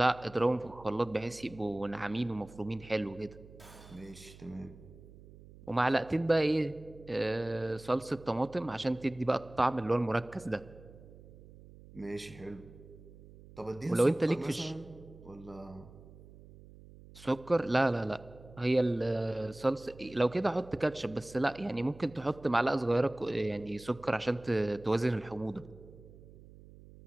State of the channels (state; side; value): noise; right; hum, 20 dB below the sound